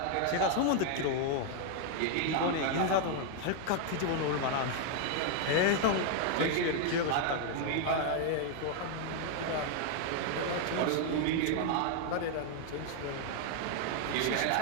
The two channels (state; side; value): different; both; correlation 0.00